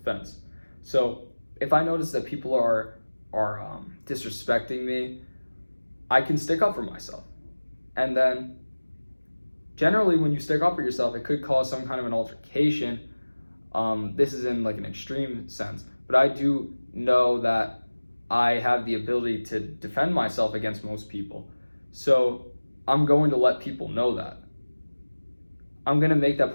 So if I notice that people are disrespecting me, I can stick up for myself. And then generally when you stick up for yourself, it could cause some kind of an altercation. This is in like an extreme sense, but I do know that I have the ability to defend myself against most people. So I'm going to let people know that. I'm going to make that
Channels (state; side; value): inverted; both; correlation -1.00